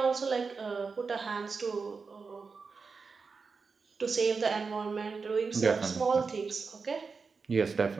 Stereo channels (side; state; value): left; quieter; 4.8 dB